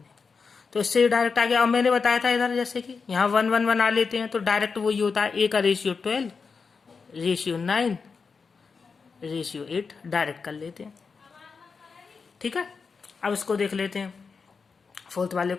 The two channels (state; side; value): quieter; right; 5.1 dB